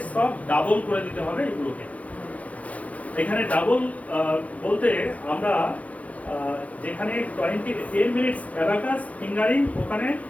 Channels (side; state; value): right; late; 0.068 ms